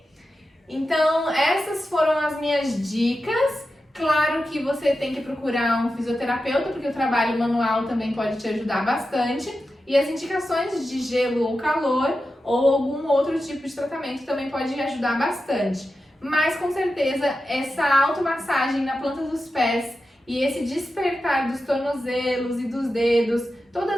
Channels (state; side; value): normal; both; correlation 0.91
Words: Então, essas foram as minhas dicas. Claro que você tem que procurar um fisioterapeuta, porque o trabalho manual também pode te ajudar bastante. E as indicações de gelo ou calor ou algum outro tipo de tratamento também pode ajudar bastante. Mas com certeza essa automassagem na planta dos pés e esse despertar dos tornozelos e dos dedos,